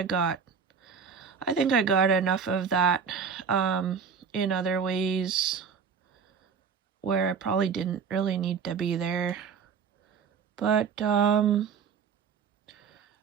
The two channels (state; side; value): quieter; left; 6.3 dB